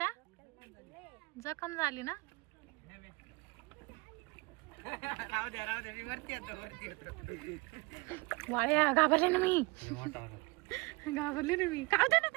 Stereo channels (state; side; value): quieter; left; 25.3 dB